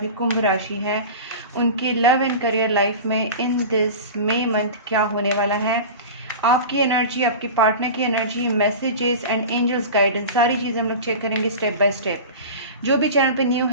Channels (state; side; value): inverted; both; correlation -0.31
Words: कुंभ राशि है, उनकी लव एंड करियर लाइफ में इन दिस मई मंथ क्या होने वाला है। आपकी एनर्जी, आपके पार्टनर की energy, messages and angels guidance, सारी चीज़ें हम लोग चेक करेंगे स्टेप बाय स्टेप। जो भी चैनल पे न्यू